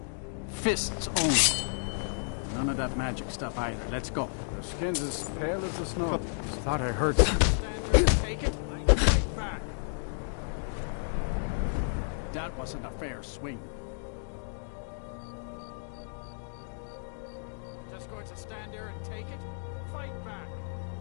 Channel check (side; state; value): right; silent; digital silence